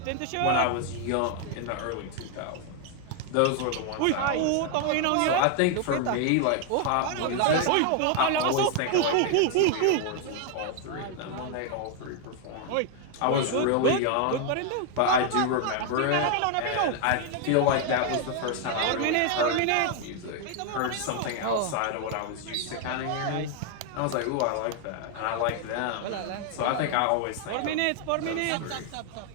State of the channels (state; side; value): different; both; correlation 0.00